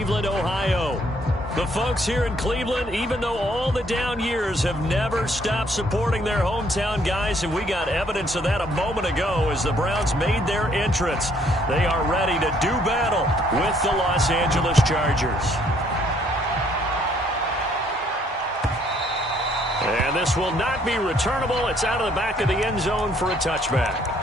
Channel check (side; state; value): both; normal; correlation 0.65